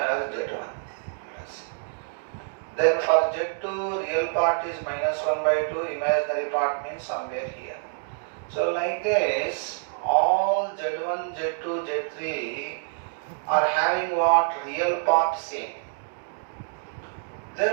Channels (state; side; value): silent; left; digital silence